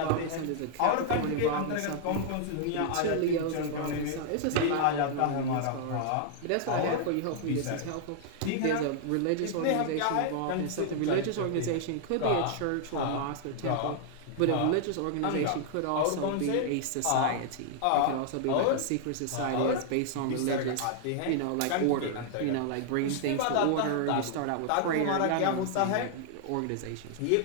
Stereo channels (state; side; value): different; both; correlation -0.01